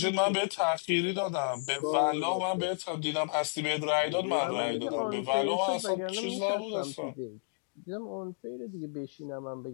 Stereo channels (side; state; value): right; silent; digital silence